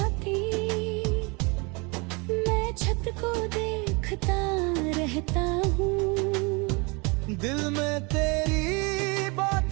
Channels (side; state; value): left; quieter; 29.0 dB